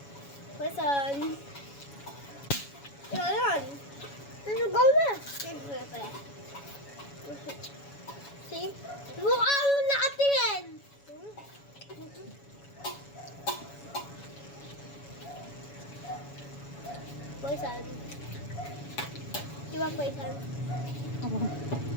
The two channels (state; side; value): late; right; 7.1 ms